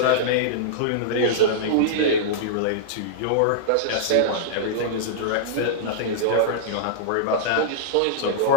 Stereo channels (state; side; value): different; both; correlation -0.02